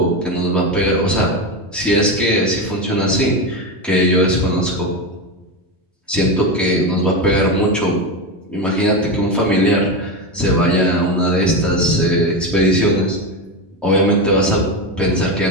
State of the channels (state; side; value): normal; both; correlation 0.16